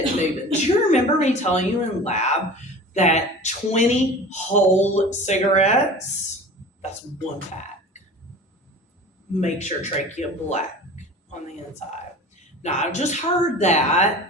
moving. Do you remember me telling you in lab that 20 whole cigarettes, that's one pack, makes your trachea black on the inside? Now, I've just heard that.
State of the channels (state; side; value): normal; both; correlation 0.38